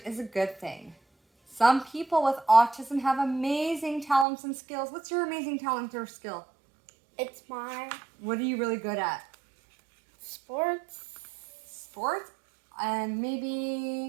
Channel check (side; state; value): left; drops out; at 4.2 s